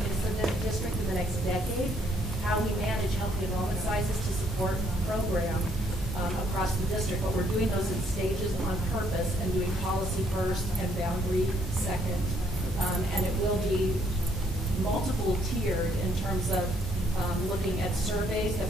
kids to the district in the next decade, how we manage healthy enrollment sizes to support the program across the district. But we're doing those in stages on purpose and doing policy first and boundary second. And it will be multiple tiered in terms of looking at surveys that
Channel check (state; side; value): normal; both; correlation 0.68